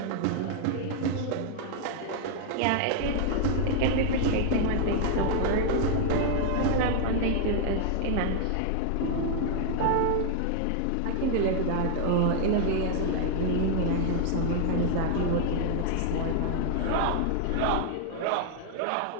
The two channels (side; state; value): both; different; correlation 0.00